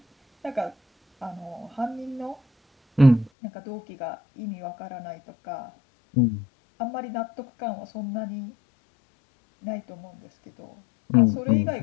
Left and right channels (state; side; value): drops out; right; at 3.3 s